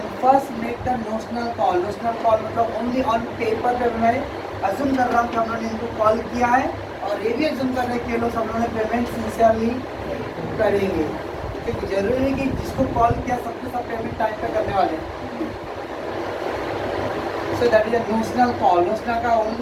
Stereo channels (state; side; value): identical; both; correlation 1.00